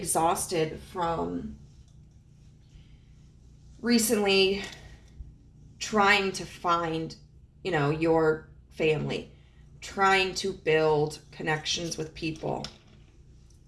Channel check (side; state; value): both; identical; correlation 1.00